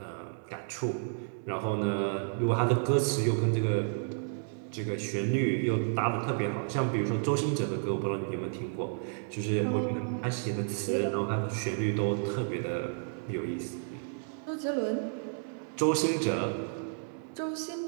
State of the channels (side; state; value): left; silent; 57 dB below the other